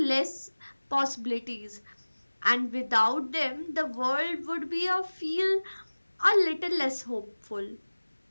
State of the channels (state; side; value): inverted; both; correlation -1.00